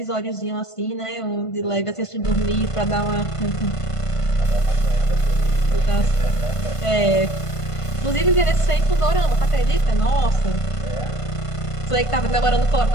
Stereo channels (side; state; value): right; late; 1.5 ms